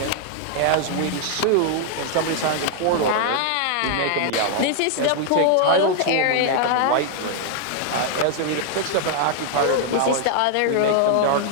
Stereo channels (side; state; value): both; different; correlation 0.00